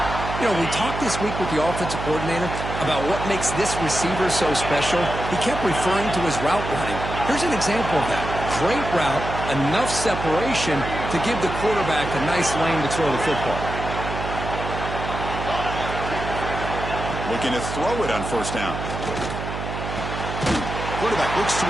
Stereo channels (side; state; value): right; noise; hum, 6 dB below the sound